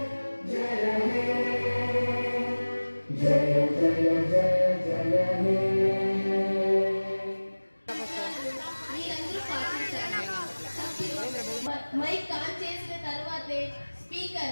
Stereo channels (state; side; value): inverted; both; correlation -1.00